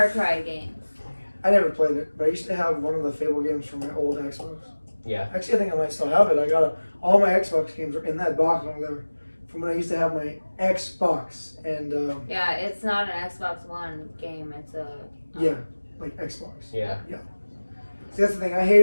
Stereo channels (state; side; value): inverted; both; correlation -1.00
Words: Cry games. I never played it, but I used to have one of the Fable games from my old Xbox. yeah. Actually, I think I might still have it. I got all my Xbox games are in that box over there from when I used to have my Xbox and Yeah, it's not an Xbox One game. It's a. yeah, like Xbox. Yeah. See, that's the thing. I hate